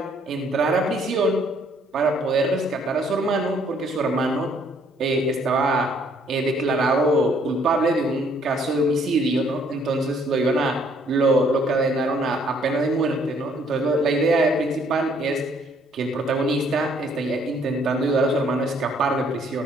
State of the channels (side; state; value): both; normal; correlation 0.64